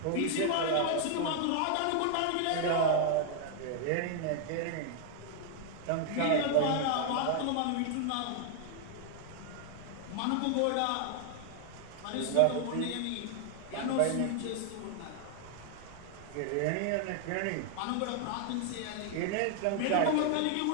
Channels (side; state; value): both; different; correlation 0.00